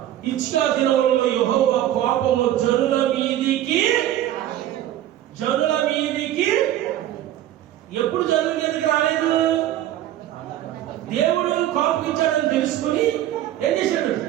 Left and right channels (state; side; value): quieter; left; 12.7 dB